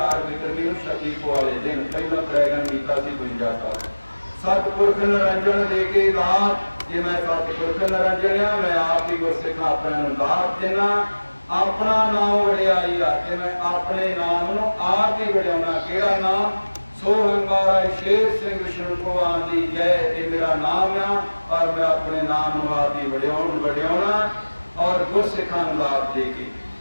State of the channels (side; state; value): both; inverted; correlation -1.00